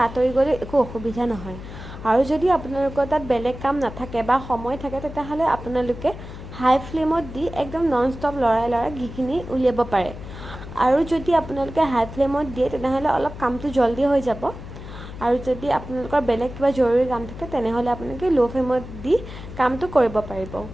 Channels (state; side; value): noise; left; hum, 12 dB below the sound